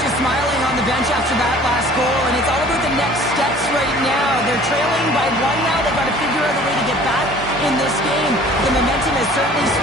is smiling on the bench after that last goal, and it's all about the next steps right now. They're trailing by 1 now. They've got to figure out a way to get back in this game. The momentum has certainly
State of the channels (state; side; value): normal; both; correlation 0.49